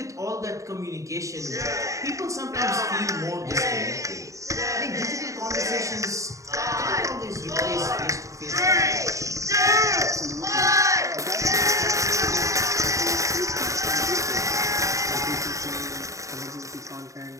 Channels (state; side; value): late; left; 0.16 ms